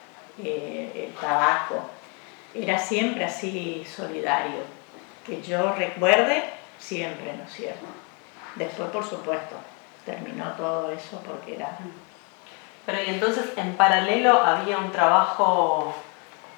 el tabaco. Era siempre así solidario, que yo recuerde siempre, ¿no es cierto? Después, por supuesto, terminó todo eso porque era... Pero y entonces, en paralelo, había un trabajo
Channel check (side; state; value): right; quieter; 34.3 dB